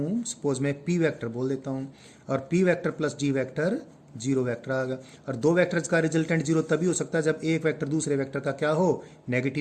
सपोज मैं पी वेक्टर बोल देता हूँ, और P vector plus D vector zero vector आ गया। और दो वेक्टर्स का रिजल्टेंट जीरो तभी हो सकता है जब एक वेक्टर दूसरे वेक्टर का क्या हो,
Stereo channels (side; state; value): both; identical; correlation 1.00